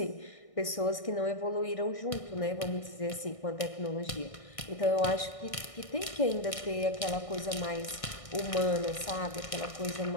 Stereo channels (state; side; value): late; right; 1.6 ms